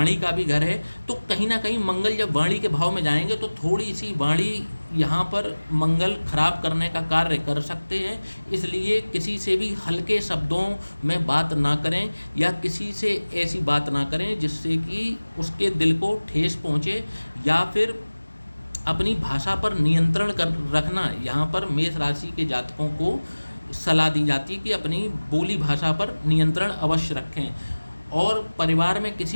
का भी घर है। तो कहीं ना कहीं मंगल जब वाणी के भाव में जाएंगे तो थोड़ी सी वाणी यहाँ पर मंगल खराब करने का कार्य कर सकते हैं। इसलिए किसी से भी हल्के शब्दों में बात ना करें या किसी से ऐसी बात ना करें जिससे कि उसके दिल को ठेस पहुँचे, या फिर अपनी भाषा पर नियंत्रण कर रखना। यहाँ पर मेष राशि के जातकों को सलाह दी जाती है कि अपनी बोली भाषा पर नियंत्रण अवश्य रखें। और परिवार में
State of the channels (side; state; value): both; inverted; correlation -1.00